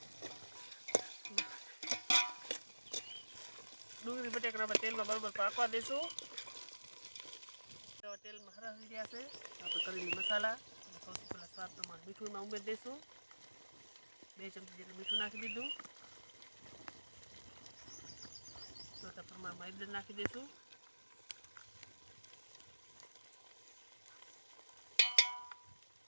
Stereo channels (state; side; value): inverted; both; correlation -1.00